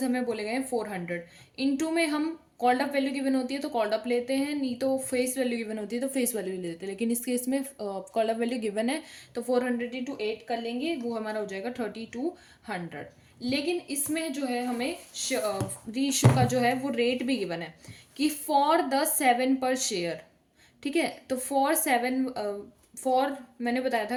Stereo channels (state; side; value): identical; both; correlation 1.00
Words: हमें बोले गए हैं 400, इनटू में हम कॉल्ड अप वैल्यू गिवन होती है तो कॉल्ड अप लेते हैं, नहीं तो फेस वैल्यू गिवन होती है तो फेस वैल्यू लेते हैं, लेकिन इस केस में कॉल्ड अप वैल्यू गिवन है तो 400 इंटू 8 कर लेंगे, वो हमारा हो जाएगा 3200। लेकिन इसमें जो है हमें री इशू का जो है वो रेट भी गिवन है कि फॉर द 7 पर शेयर। ठीक है, तो फॉर मैंने बताया था